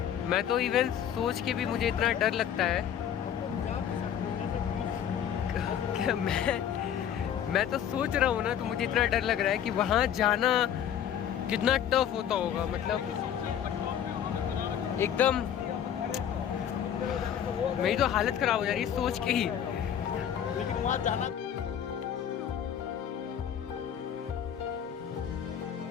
मैं तो इवन सोच के भी मुझे इतना डर लगता है। मैं तो सोच रहा हूँ ना, तो मुझे इतना डर लग रहा है कि वहाँ जाना कितना टफ होता होगा। मतलब एकदम मेरी तो हालत खराब हो जा रही है सोच के ही। लेकिन वहाँ जाना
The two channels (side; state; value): right; quieter; 9.4 dB